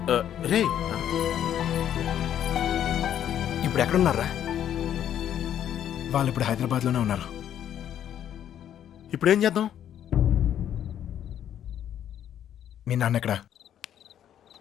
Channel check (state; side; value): quieter; right; 10.3 dB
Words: రే ఇప్పుడు ఎక్కడున్నారా? వాళ్ళు ఇప్పుడు హైదరాబాద్లోనే ఉన్నారు. ఇప్పుడు ఏం చేద్దాం? మీ నాన్న ఎక్కడ?